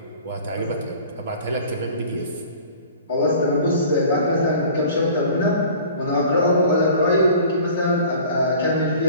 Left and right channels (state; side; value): inverted; both; correlation -0.45